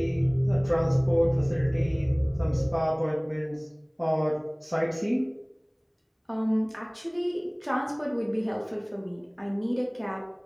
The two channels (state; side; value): identical; both; correlation 1.00